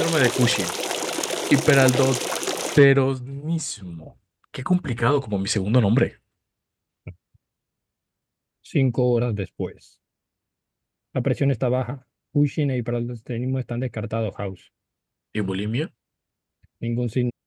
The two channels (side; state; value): both; identical; correlation 1.00